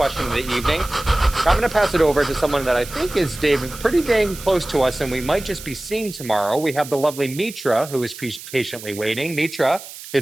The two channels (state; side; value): noise; right; hiss, 14 dB below the sound